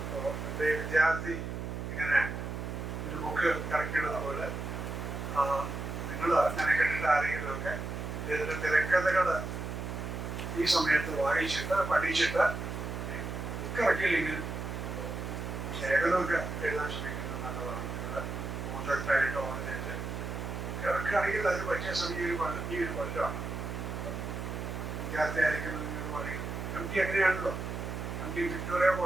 എൻ്റെ വിദ്യാർത്ഥി ഇങ്ങനെ ഒരു ബുക്ക് ഇറക്കിയിടുന്ന പോലെ നിങ്ങൾ അങ്ങനെ കണ്ടിട്ട് ആരെങ്കിലുമൊക്കെ ഇതിൻ്റെ തിരക്കഥകൾ ഈ സമയത്ത് വായിച്ചിട്ട് പഠിച്ചിട്ട് ബുക്ക് ഇറക്കിയില്ലെങ്കിൽ ലേഖനമൊക്കെ എഴുതാൻ ശ്രമിക്കുന്നത് നല്ലതാണ്. നിങ്ങൾ പ്രോജക്റ്റായിട്ടോ അങ്ങനെ ഇറക്കുകയാണെങ്കിൽ അതിന് പറ്റിയ സമയം ഈ ഒരു കൊല്ലമാണ്. വിദ്യാർത്ഥി ആയിരിക്കും നിങ്ങൾ പറയും. MT അങ്ങനെയാണല്ലോ. MT വിക്ടോറിയ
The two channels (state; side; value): noise; right; hum, 5 dB below the sound